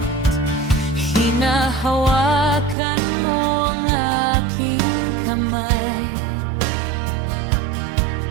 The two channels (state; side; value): drops out; left; at 2.8 s